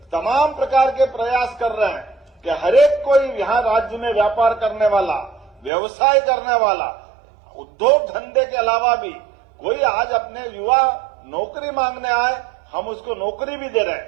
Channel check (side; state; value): left; drops out; at 5.7 s